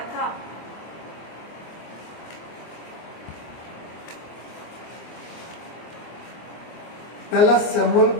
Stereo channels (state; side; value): late; right; 24 ms